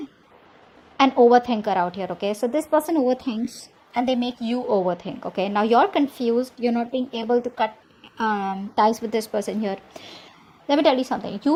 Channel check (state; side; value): identical; both; correlation 1.00